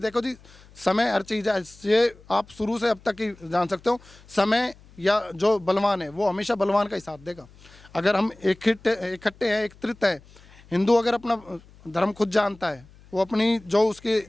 जी, समय हर चीज़ है। ये आप शुरू से अब तक ही जान सकते हो, समय या जो बलवान है वो हमेशा बलवान का ही साथ देगा। अगर हम इकट्ठे हैं, एकत्रित है, हिंदू अगर अपना धर्म खुद जानता है, वो अपनी जो उसके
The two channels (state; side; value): noise; left; hum, 25 dB below the sound